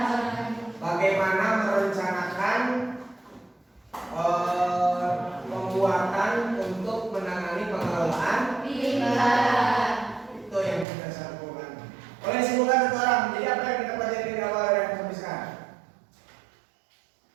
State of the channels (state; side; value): drops out; left; at 10.9 s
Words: Bagaimana merencanakan pembuatan untuk menangani pengelolaan itu yang kita simpulkan. Boleh simpulkan satu orang. Jadi apa yang kita pelajari dari awal dan sampai sekarang?